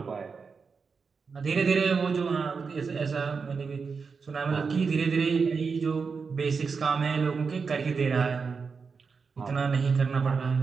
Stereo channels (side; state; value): left; quieter; 5.2 dB